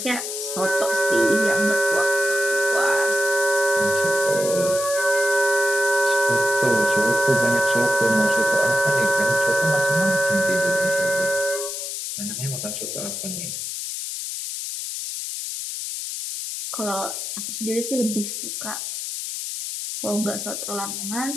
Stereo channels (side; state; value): left; noise; hiss, 5 dB below the sound